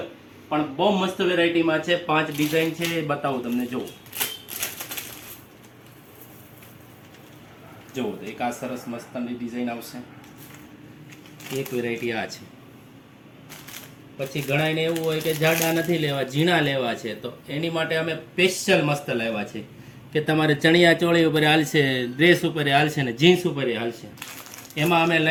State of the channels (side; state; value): both; identical; correlation 1.00